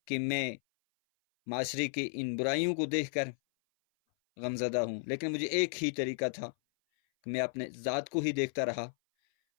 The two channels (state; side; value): silent; right; 55 dB below the other